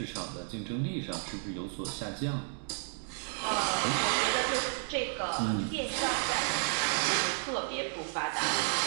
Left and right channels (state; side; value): silent; left; 56 dB below the other